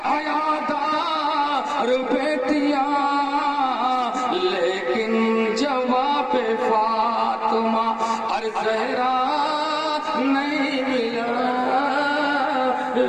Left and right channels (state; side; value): identical; both; correlation 1.00